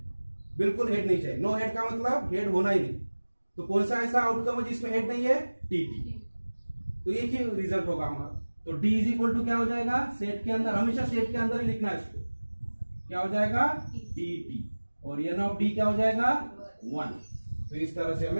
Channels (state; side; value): inverted; both; correlation -1.00